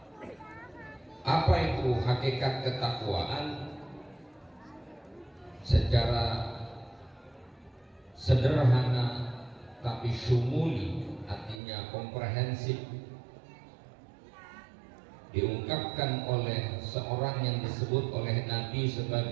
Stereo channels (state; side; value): drops out; left; at 11.6 s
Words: Apa itu hakikat ketakwaan? Secara sederhana tapi syumuli, artinya komprehensif, diungkapkan oleh seorang yang disebut oleh Nabi